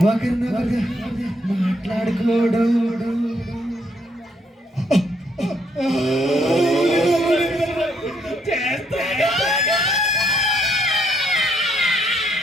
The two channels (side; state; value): both; normal; correlation 0.71